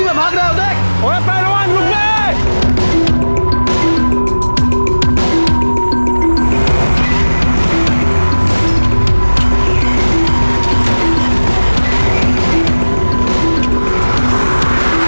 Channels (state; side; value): inverted; both; correlation -1.00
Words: में भाग रहा है, देख। ओए पहलवान, रुक गए।